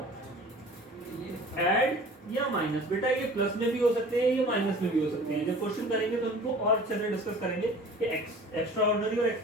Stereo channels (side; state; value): both; normal; correlation 0.44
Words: ऐड या माइनस। बेटा ये प्लस में भी हो सकते हैं, ये माइनस में भी हो सकते हैं। जब क्वेश्चन करेंगे तो उनको और अच्छे से डिस्कस करेंगे कि एक्स्ट्राऑर्डिनरी और